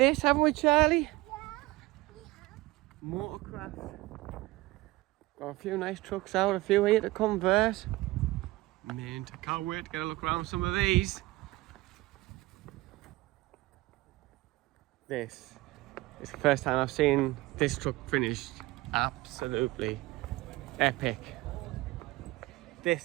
haven't we, Charlie? Yeah, we have. Motorcraft. Got a few nice trucks out, a few here to convert. Mint. I can't wait to get a look around some of these. This is the first time I've seen this truck finished. Absolutely epic.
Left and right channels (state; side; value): quieter; left; 20.0 dB